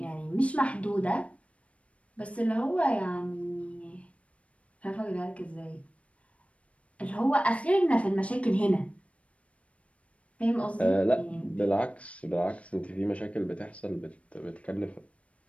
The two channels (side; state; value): right; late; 0.063 ms